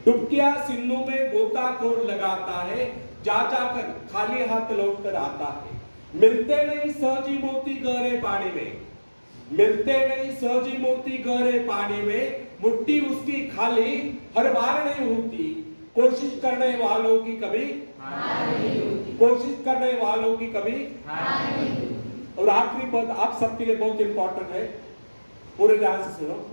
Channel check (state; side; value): inverted; both; correlation -1.00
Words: डुबकियां सिंधु में गोताखोर लगाता है, जा जाकर खाली हाथ लौट कर आता है। मिलते नहीं सहजी मोती गहरे पानी में, मिलते नहीं सहजी मोती गहरे पानी में, मुट्ठी उसकी खाली हर बार नहीं होती, कोशिश करने वालों की कभी कोशिश करने वालों की कभी। और आखिरी पद आप सबके लिए बहुत इंपॉर्टेंट है, पूरे ध्यान से सुनो।